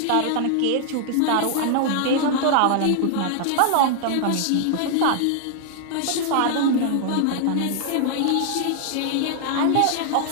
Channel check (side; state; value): both; different; correlation 0.00